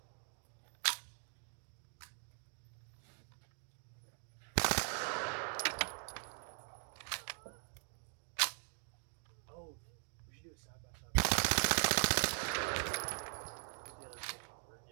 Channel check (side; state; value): left; silent; 50 dB below the other